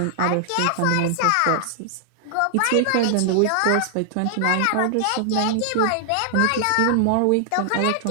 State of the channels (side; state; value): both; different; correlation 0.00